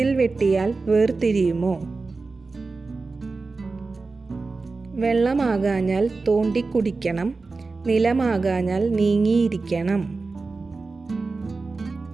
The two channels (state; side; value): quieter; left; 3.9 dB